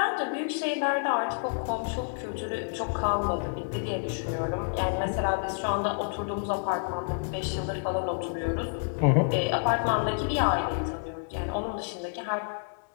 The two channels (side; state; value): right; silent; 59 dB below the other